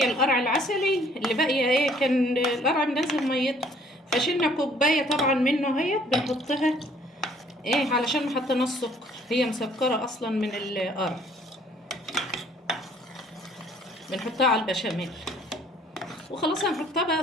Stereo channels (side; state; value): both; normal; correlation 0.59